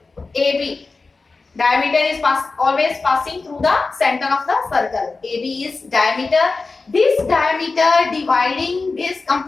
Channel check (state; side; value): quieter; right; 3.9 dB